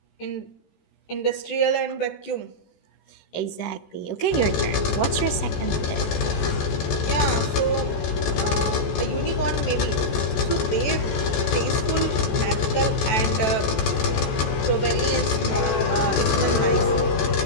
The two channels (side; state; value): right; late; 14 ms